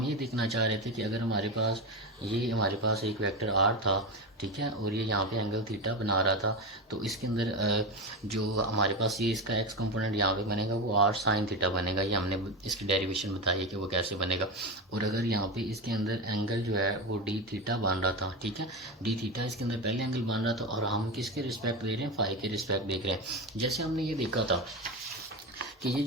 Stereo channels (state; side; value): normal; both; correlation 0.18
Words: ये देखना चाह रहे थे कि अगर हमारे पास हमारे पास एक वेक्टर आर था, ठीक है, और ये यहाँ पे एंगल थीटा बना रहा था, तो इसके अंदर जो हमारे पास ये इसका एक्स कंपोनेंट यहाँ पे बनेगा वो आर साइन थीटा बनेगा। ये हमने इसकी डेरिवेशन बताई है कि वो कैसे बनेगा। और अगर यहाँ पे इसके अंदर एंगल जो है वो डी थीटा बन रहा था, ठीक है, डी थीटा इसके अंदर पहले एंगल बन रहा था, और हम किसके रिस्पेक्ट दे रहे हैं, फाई के रिस्पेक्ट देख रहे हैं। जैसे हमने ये देखा था कि ये